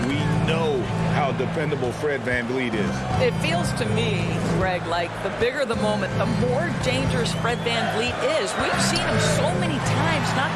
we know how dependable Fred VanVleet is. It feels to me, Greg, like the bigger the moment, the more dangerous Fred VanVleet is. We've seen him so many times knock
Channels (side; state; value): both; identical; correlation 1.00